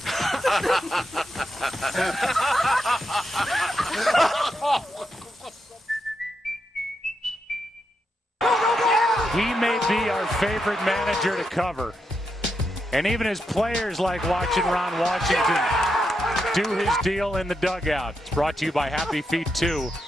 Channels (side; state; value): both; normal; correlation 0.84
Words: He may be our favorite manager to cover. And even his players like watching Ron Washington do his deal in the dugout. It's brought to you by Happy Feet 2.